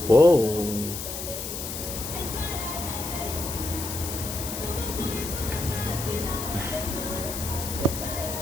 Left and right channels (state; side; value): noise; left; hiss, 6 dB below the sound